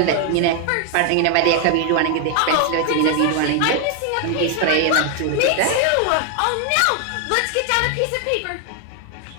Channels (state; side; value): different; both; correlation 0.01